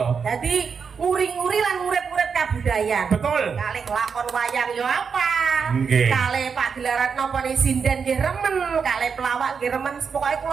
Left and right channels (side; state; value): left; quieter; 6.0 dB